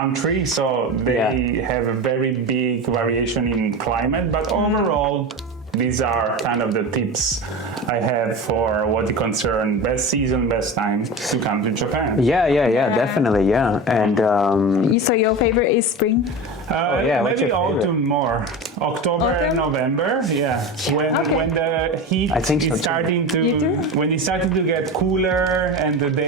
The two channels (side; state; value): both; normal; correlation 0.27